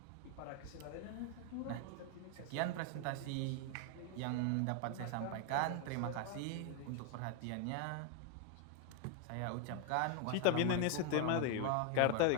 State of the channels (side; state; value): both; different; correlation 0.01